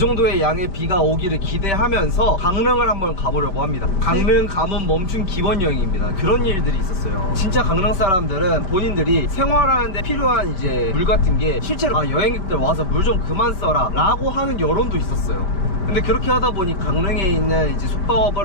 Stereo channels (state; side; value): late; right; 5.2 ms